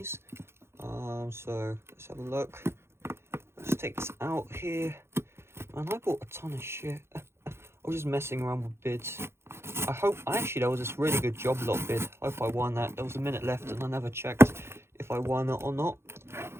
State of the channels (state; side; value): late; left; 0.12 ms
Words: so let's have a look. Let's take this out here. Man, I bought a ton of shit. I was just messing around with bids. Actually there was this really good job lot bid. I hope I won that. There was a minute left and I never checked if I won it or not.